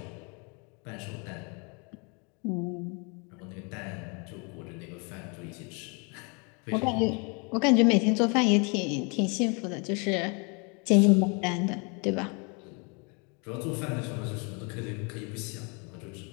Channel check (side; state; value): right; quieter; 33.4 dB